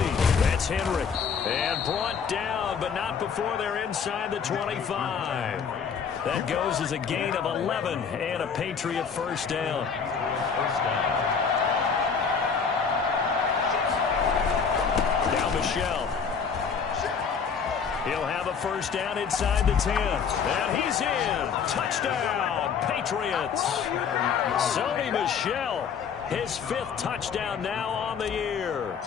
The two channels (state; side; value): quieter; right; 6.3 dB